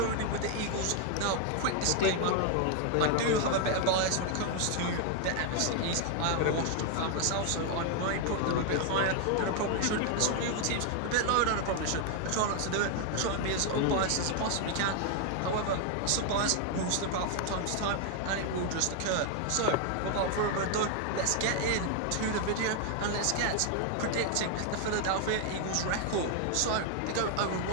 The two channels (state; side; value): different; both; correlation 0.00